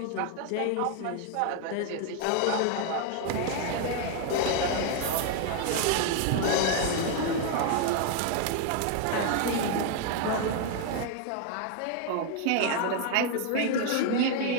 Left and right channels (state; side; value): different; both; correlation 0.00